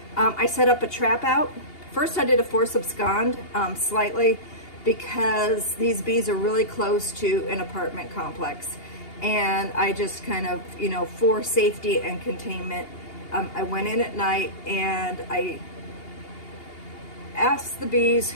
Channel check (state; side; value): late; right; 2.8 ms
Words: I set up a trap out. First, I did a force abscond slightly, because these bees are really close to an apartment complex. And I just kind of, for safety and containment, I went in at night and I asked the bees